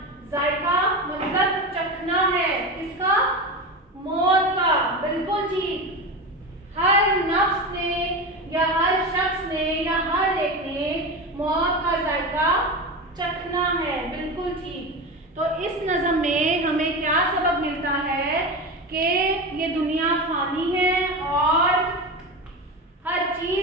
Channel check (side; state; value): both; normal; correlation 0.23